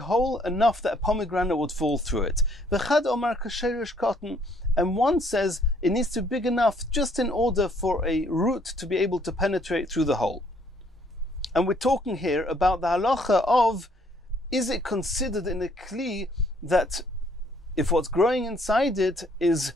enough that a pomegranate would fall through it. V'chad Omar kasherish cotton. And one says it needs to be big enough just in order for a root to be able to penetrate through the hole. And we're talking here about the halacha of, is it considered in a kli that if what's growing inside it is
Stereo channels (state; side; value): normal; both; correlation 0.65